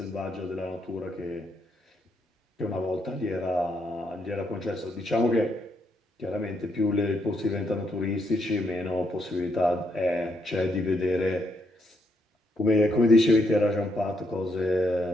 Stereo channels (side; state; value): both; normal; correlation 0.76